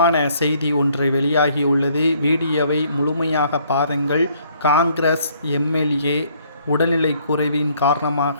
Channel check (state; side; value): inverted; both; correlation -0.64